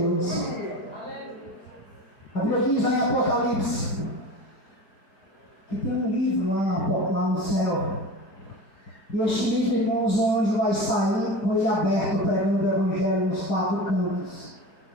A Bíblia diz lá em Apocalipse que tem um livro lá no céu. E este livro, irmãos, o anjo vai sair com ele aberto, pregando o Evangelho nos 4 cantos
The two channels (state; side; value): late; right; 4.7 ms